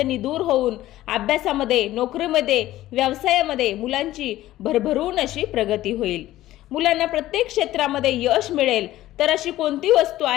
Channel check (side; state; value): right; quieter; 15.1 dB